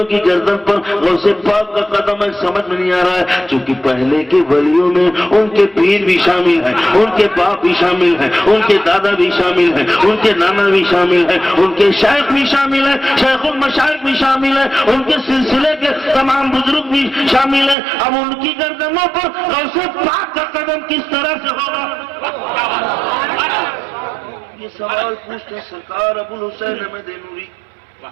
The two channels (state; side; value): drops out; left; at 17.8 s